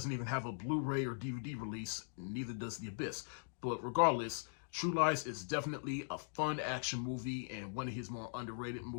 even have a Blu-ray or DVD release, neither does The Abyss. But regardless, True Lies is definitely a fun action movie and one of his more underrated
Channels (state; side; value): silent; right; digital silence